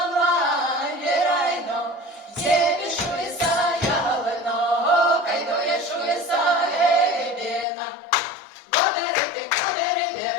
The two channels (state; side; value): drops out; right; at 7.7 s